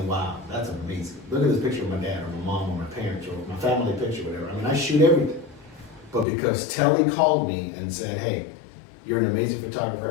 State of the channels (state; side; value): drops out; right; at 6.2 s